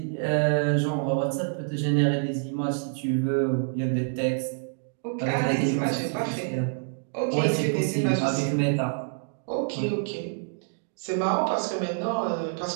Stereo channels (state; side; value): silent; left; digital silence